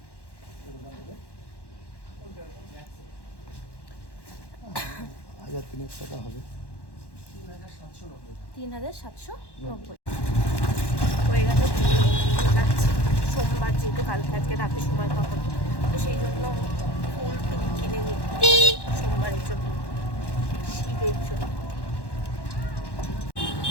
1300 টাকা হবে। 3790 হয়ে গেল। যাচ্ছি সোমবার, যেহেতু কালকে আজকে রাতে সময় পাবো, তো সেই জন্য ফুল টুল কিনে নিই সোমবারের জন্য, শিবের জন্য।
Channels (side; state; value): right; late; 1.1 ms